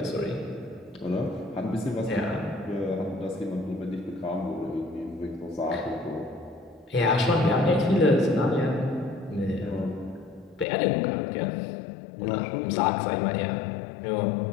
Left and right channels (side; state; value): right; drops out; at 10.7 s